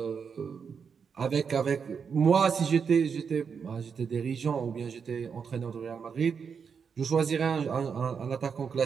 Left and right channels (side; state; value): left; quieter; 6.3 dB